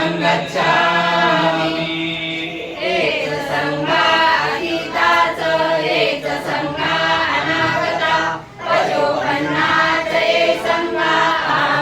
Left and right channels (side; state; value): both; identical; correlation 1.00